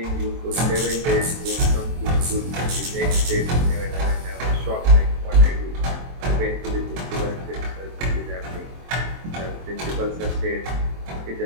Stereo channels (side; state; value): left; late; 23 ms